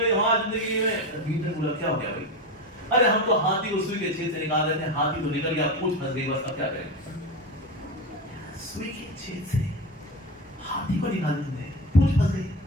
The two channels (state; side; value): normal; both; correlation 0.21